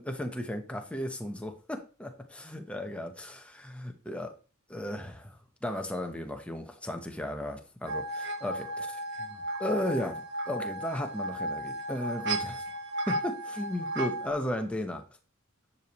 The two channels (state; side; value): normal; both; correlation 0.31